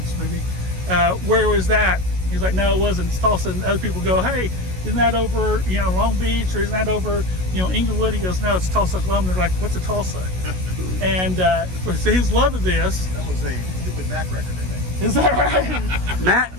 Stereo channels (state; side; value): late; left; 16 ms